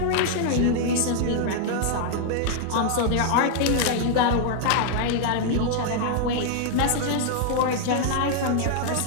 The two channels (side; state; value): both; different; correlation 0.00